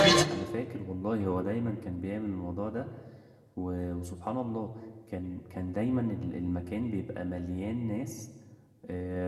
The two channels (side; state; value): both; identical; correlation 1.00